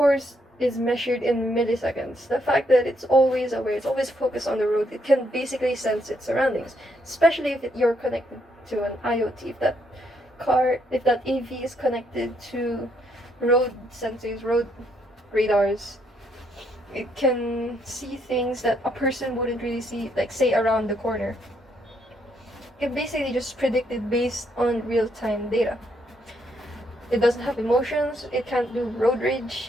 is measured in milliseconds. The fact that it's always aware, it's always focused on the road, it can basically sense its surroundings, especially if you're connected to an IoT. If that AV is connected to road sensors, road radars, it can see things that a person wouldn't really see, like say around the corner. It basically just predicted based on real-time data. It doesn't have emotions, it can't do road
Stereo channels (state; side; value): normal; both; correlation 0.74